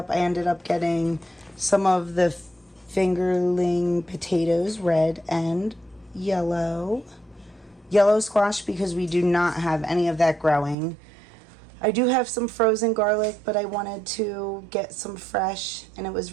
ended up getting some of the fingerling potatoes, red and yellow squash, because we do not have any of that growing. I do have some frozen garlic, but I wanted to get some fresh, and it was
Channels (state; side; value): drops out; left; at 10.8 s